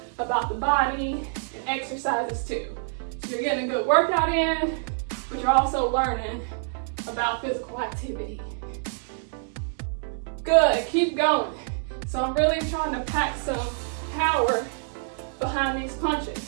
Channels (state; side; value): silent; left; digital silence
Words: about the body and exercises too. So you're getting a good workout in, but you're also learning about physical activity. Good, keep going. So I'm really trying to pack some power behind these